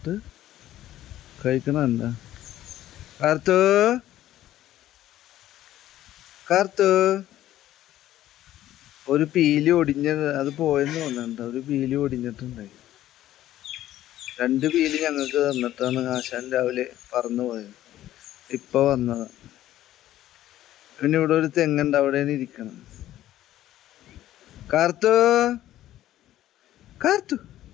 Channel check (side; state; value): right; quieter; 13.4 dB